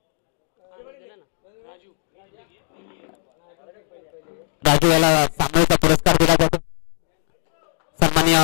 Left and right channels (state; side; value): silent; right; digital silence